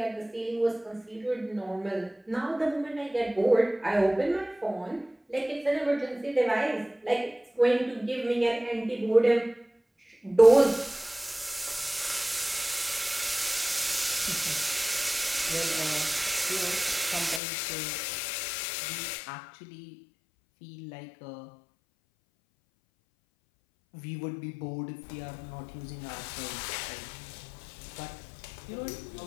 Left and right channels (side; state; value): right; drops out; at 17.4 s